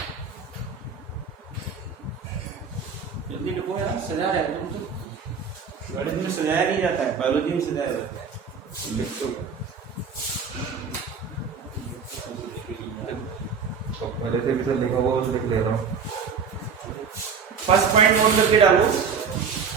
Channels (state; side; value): quieter; left; 6.0 dB